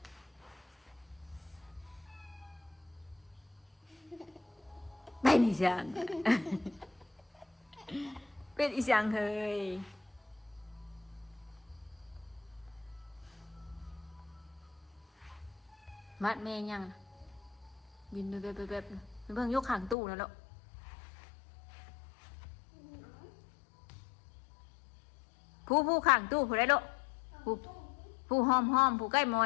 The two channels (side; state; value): right; drops out; at 20.0 s